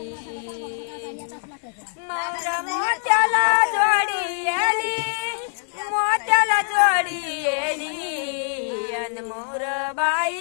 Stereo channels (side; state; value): right; silent; digital silence